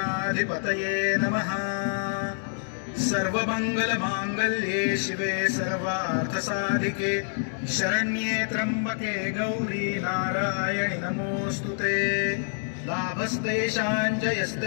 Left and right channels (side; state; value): right; silent; digital silence